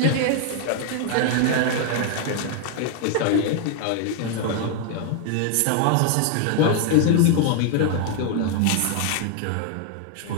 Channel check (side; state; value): both; different; correlation 0.00